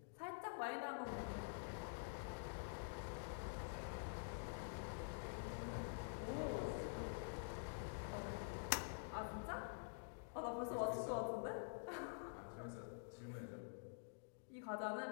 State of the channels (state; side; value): silent; right; digital silence